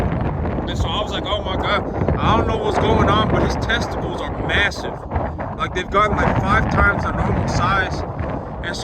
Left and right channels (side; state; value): both; identical; correlation 1.00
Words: And so I was like, oh my God, I don't know what's going on, but his testicles are massive. Like they've gotten like 5 times their normal size. And